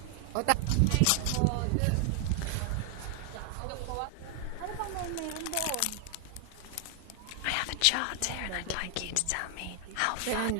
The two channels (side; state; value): both; different; correlation 0.00